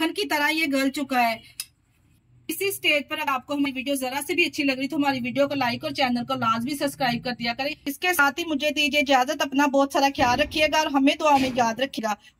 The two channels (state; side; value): identical; both; correlation 1.00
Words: की तरह ये गल चुका है। इसी स्टेज पर अगर आपको हमारी वीडियो जरा से भी अच्छी लग रही तो हमारी वीडियो को लाइक और चैनल को लाजमी सब्सक्राइब कर दिया करें। इसके साथ ही मुझे दीजिए इजाजत। अपना बहुत सारा ख्याल रखिएगा और हमें दुआ में याद रखिएगा।